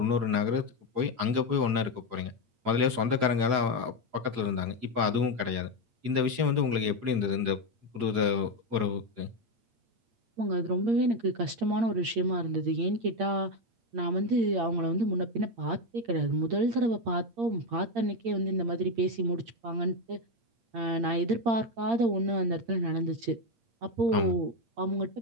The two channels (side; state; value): left; late; 8.7 ms